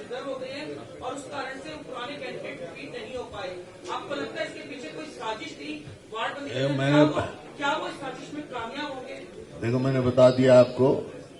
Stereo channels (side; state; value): both; identical; correlation 1.00